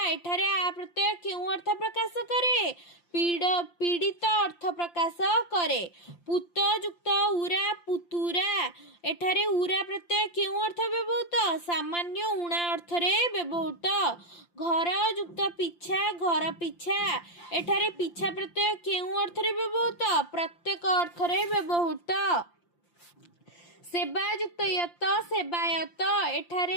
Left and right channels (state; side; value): late; right; 5.8 ms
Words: ଏଠାରେ ଆ ପ୍ରତ୍ୟୟ କେଉଁ ଅର୍ଥ ପ୍ରକାଶ କରେ ପୀଡ଼ିତ ଅର୍ଥ ପ୍ରକାଶ କରେ ପୁତ ଯୁକ୍ତ ଉରା ପୁତୁରା ଏଠାରେ ଉରା ପ୍ରତ୍ୟୟ କେଉଁ ଅର୍ଥ ବ୍ୟବହୃତ ସାମାନ୍ୟ ଉଣା ଅର୍ଥରେ ବ୍ୟବହୃତ ଘର ଯୁକ୍ତ ପିଛା ଘର ପିଛା ଏଠାରେ ପିଛା ପ୍ରତ୍ୟୟ କେଉଁ ଅର୍ଥରେ ବ୍ୟବହୃତ ପ୍ରତ୍ୟେକ ଅର୍ଥରେ ବ୍ୟବହୃତ ସେବା ଯୁକ୍ତ ୟତ ସେବାୟତ ଏଠାରେ